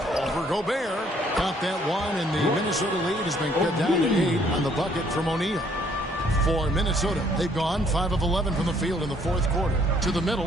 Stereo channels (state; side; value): normal; both; correlation 0.64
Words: For Gobert. Got that one, and the Minnesota lead has been cut down to 8 on the bucket from O'Neal. For Minnesota, they've gone 5 of 11 from the field in the fourth quarter. To the